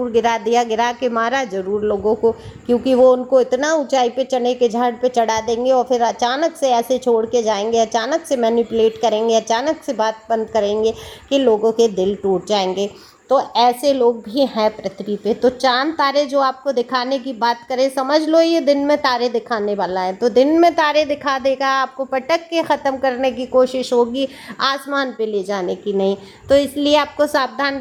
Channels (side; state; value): both; identical; correlation 1.00